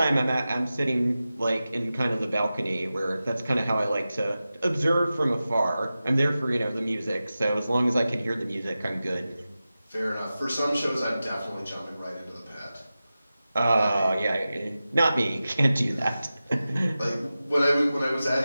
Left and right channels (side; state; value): both; inverted; correlation -0.94